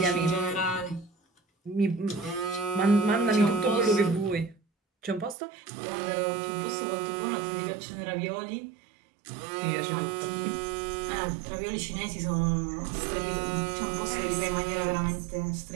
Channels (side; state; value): left; drops out; at 5.4 s